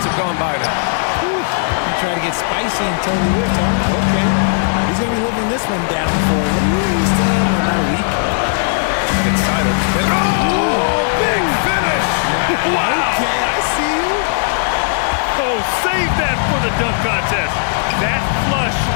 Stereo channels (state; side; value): silent; right; digital silence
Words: have gone by now. You try to get spicy and Tony Whift, huh? Okay. He's going to be living this one down for at least about a week. And it's Simons. Oh, big finish! Wow! Okay, I see you. Oh, save that for the dunk contest. That flush